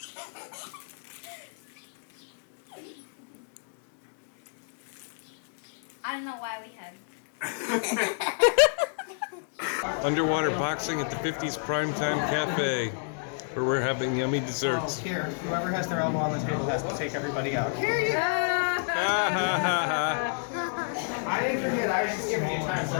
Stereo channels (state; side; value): silent; right; digital silence